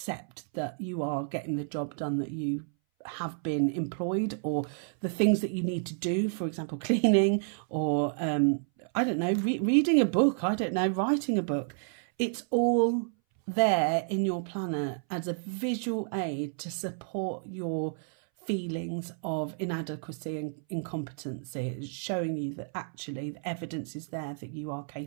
that you are getting the job done that you have been employed, or the things that you need to do, for example cleaning, or I don't know, reading a book, I don't know, writing a book. It's all there in your planner as a visual aid to support your feelings of inadequacy and incompetency. It's showing you that actually the evidence is there that you are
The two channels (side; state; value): left; silent; 58 dB below the other